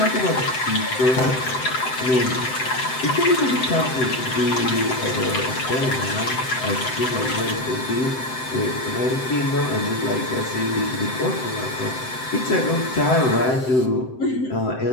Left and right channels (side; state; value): right; late; 7.8 ms